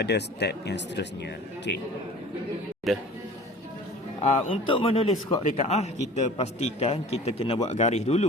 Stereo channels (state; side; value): normal; both; correlation 0.43